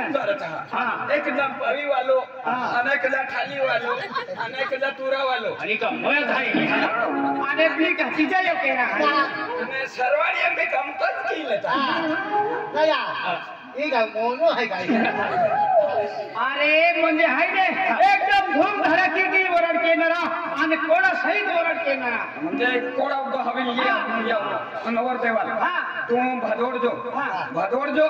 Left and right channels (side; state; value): both; identical; correlation 1.00